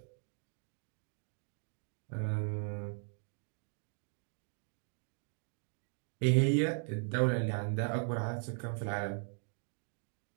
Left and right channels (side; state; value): left; silent; 52 dB below the other